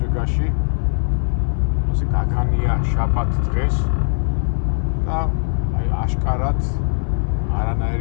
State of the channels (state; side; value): silent; right; digital silence